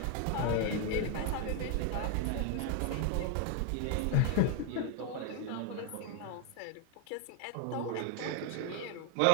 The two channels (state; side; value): different; both; correlation 0.00